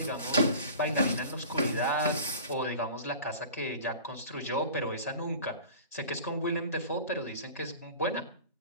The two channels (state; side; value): inverted; both; correlation -0.40